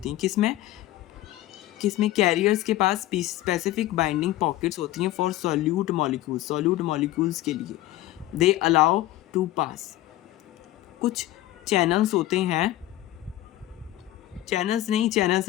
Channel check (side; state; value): right; quieter; 15.5 dB